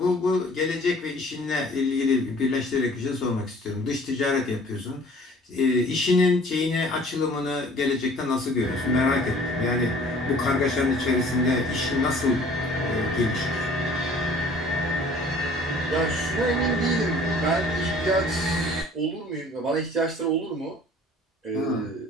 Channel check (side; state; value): both; normal; correlation 0.51